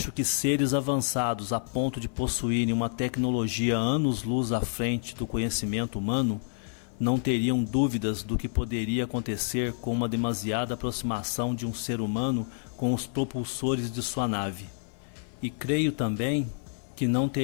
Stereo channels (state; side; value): silent; right; 59 dB below the other